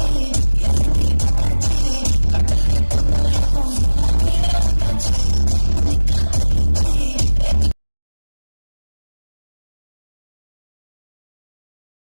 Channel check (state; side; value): inverted; both; correlation -1.00